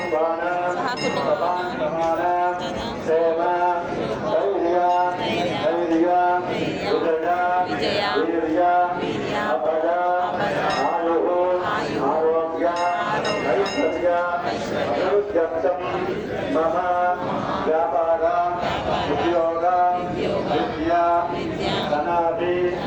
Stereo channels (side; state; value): both; identical; correlation 1.00